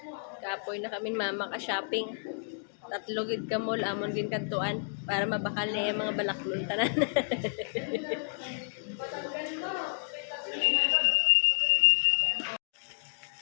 Kapoy na kami mama ka shopping. Tatlo gid ka mall amon gin kantuan para mabakal na yung mga balaklon tanan.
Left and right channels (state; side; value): silent; right; digital silence